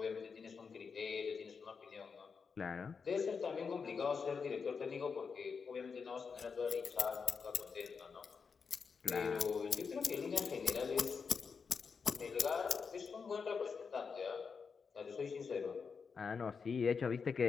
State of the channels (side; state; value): right; quieter; 5.6 dB